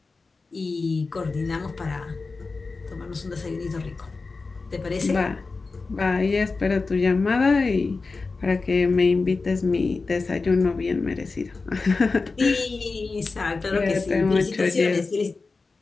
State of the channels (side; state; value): right; quieter; 4.0 dB